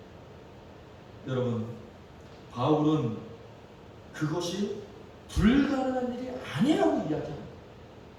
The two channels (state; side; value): identical; both; correlation 1.00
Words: 여러분, 바울은 그것이 불가능한 일이 아니라고 이야기합니다.